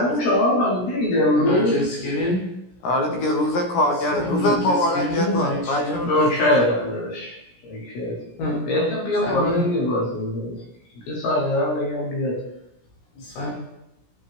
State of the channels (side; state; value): right; late; 17 ms